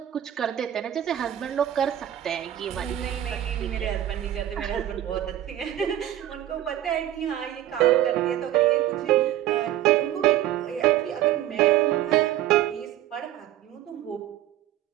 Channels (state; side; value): quieter; left; 12.6 dB